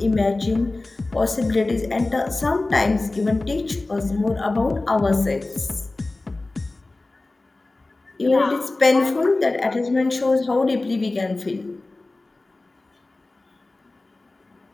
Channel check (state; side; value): quieter; right; 3.1 dB